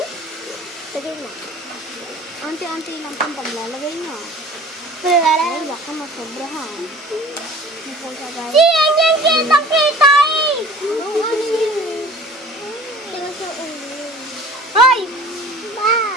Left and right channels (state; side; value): normal; both; correlation 0.45